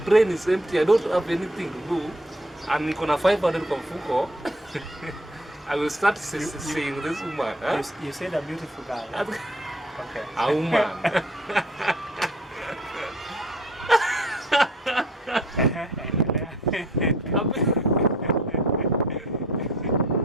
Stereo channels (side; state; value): both; normal; correlation 0.55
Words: brain is empty, I don't have anything to do. And niko na 500 kwa mfuko. I will start seeing this woman. Huh? You said a beautiful girl. Okay. A woman.